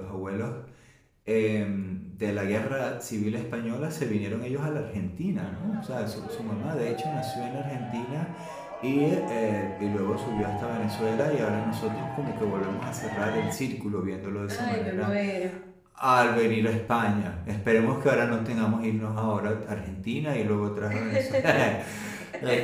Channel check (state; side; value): identical; both; correlation 1.00